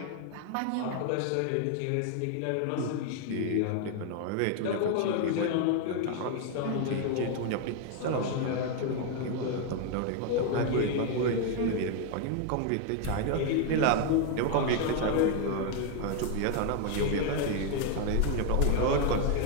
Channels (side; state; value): both; different; correlation 0.01